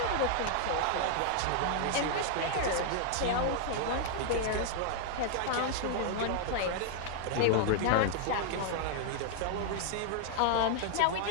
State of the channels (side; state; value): both; different; correlation 0.00